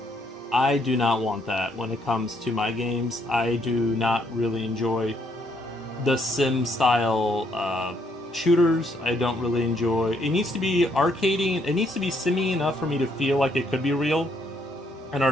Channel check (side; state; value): both; normal; correlation 0.71